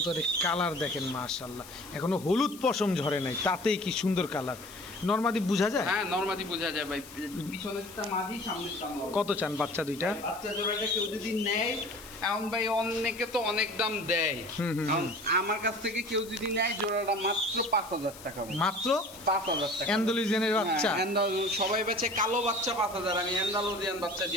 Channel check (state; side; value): noise; left; hiss, 18 dB below the sound